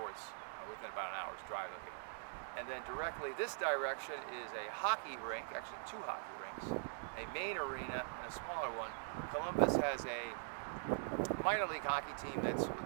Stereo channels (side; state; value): left; silent; digital silence